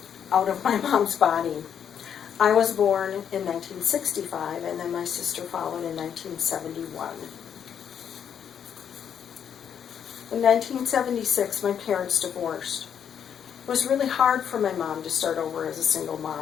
out of my mom's body. I was born in 1965, and then my sister followed in 1971. In 1976, my parents divorced. It was really hard for my mom to start over as a single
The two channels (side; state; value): right; quieter; 8.4 dB